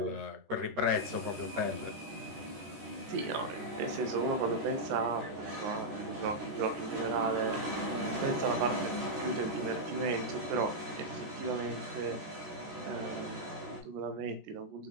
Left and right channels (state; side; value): late; left; 14 ms